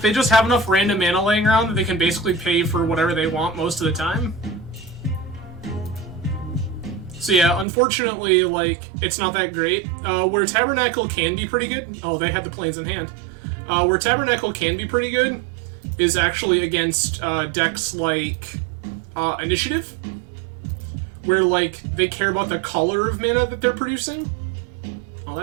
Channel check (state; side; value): drops out; left; at 7.7 s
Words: they just have enough random mana laying around that they can basically pay for whatever they want most of the time. So yeah, unfortunately, like, it's not that great. Where Tabernacle can be pretty good... Oh, they had the planes in hand. Where Tabernacle can be pretty good is actually against decks like Initiative, where, like, they care about the color of mana that they're producing. Oh,